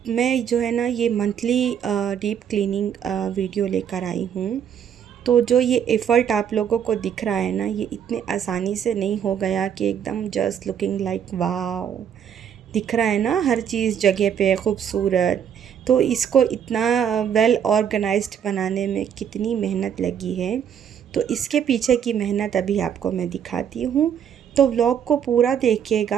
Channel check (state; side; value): quieter; left; 8.6 dB